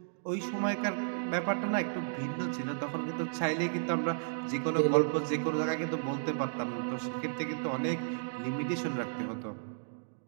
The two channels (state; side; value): silent; left; digital silence